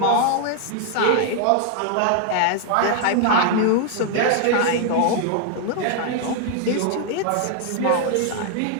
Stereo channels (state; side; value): different; both; correlation 0.00